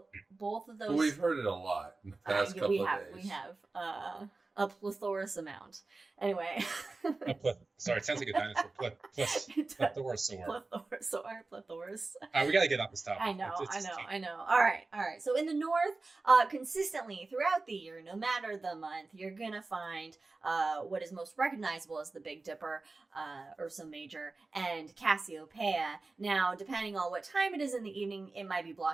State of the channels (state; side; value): quieter; left; 3.6 dB